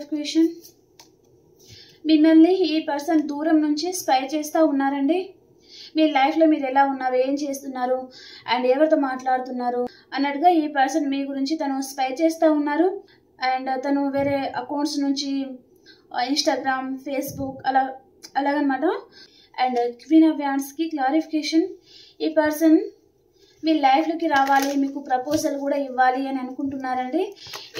మిమ్మల్ని ఈ పర్సన్ దూరం నుంచి స్పై చేస్తూ ఉన్నారండి. మీ లైఫ్లో మీరు ఎలా ఉన్నారు, ఏం చేస్తున్నారు అండ్ ఎవరితో మాట్లాడుతున్నారు అన్నట్టుగా ఈ పర్సన్ మీ గురించి తను స్పై చేస్తూ ఉన్నారు. అండ్ తను వేరే అకౌంట్స్ నుంచి ఇన్స్టాగ్రామ్, ఫేస్బుక్ అలాగనమాట. అండ్ క్వీన్ ఆఫ్ వ్యాండ్స్కి క్లారిఫికేషన్. ఈ పర్సన్ మీ లైఫ్లోకి రావాలి, మీకు ప్రపోజల్ కూడా ఇవ్వాలి అని అనుకుంటున్నారండి.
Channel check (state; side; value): identical; both; correlation 1.00